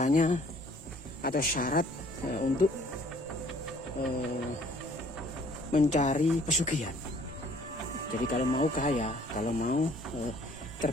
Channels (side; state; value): both; normal; correlation 0.58